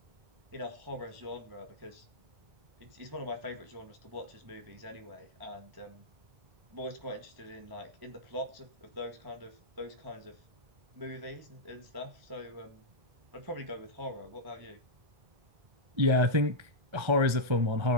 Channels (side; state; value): left; late; 1.3 ms